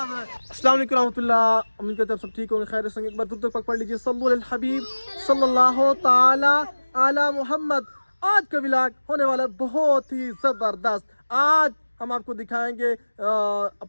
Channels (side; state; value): both; inverted; correlation -1.00